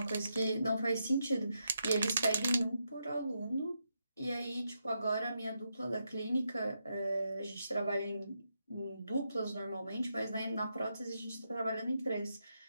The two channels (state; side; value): inverted; both; correlation -0.83